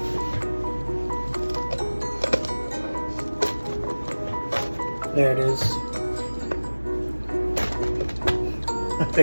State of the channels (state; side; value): inverted; both; correlation -1.00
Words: There it is. I